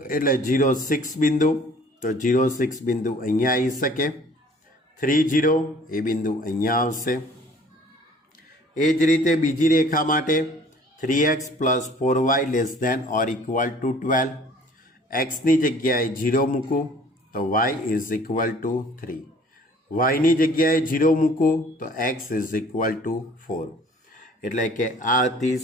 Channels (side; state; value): both; normal; correlation 0.52